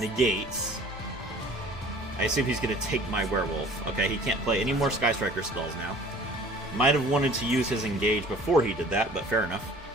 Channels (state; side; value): normal; both; correlation 0.49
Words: I assume he's gonna take my werewolf. Okay, he can't play any more Sky Striker spells now. Might have wanted to use his engage before he did that, but fair enough.